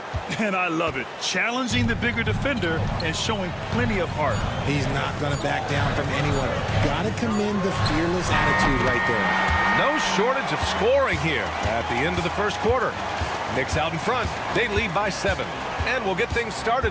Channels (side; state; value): both; identical; correlation 1.00